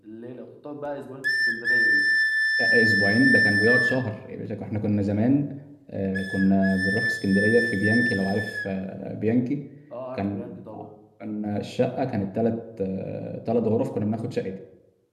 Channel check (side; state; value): both; identical; correlation 1.00